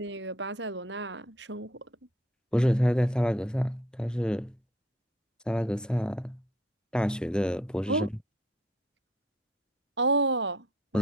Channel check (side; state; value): both; normal; correlation 0.60